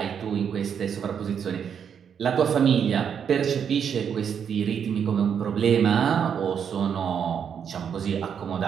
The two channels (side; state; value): left; quieter; 7.7 dB